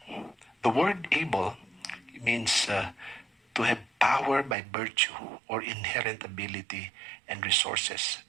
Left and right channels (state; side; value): drops out; left; at 4.5 s